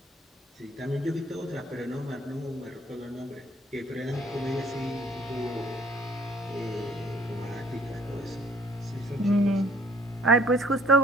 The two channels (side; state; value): both; normal; correlation 0.58